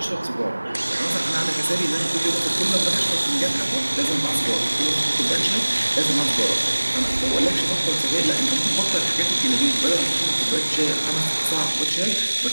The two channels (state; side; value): inverted; both; correlation -1.00